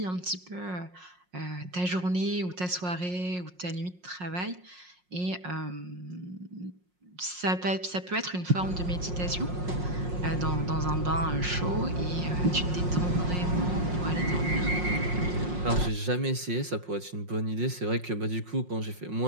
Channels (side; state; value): left; late; 5.6 ms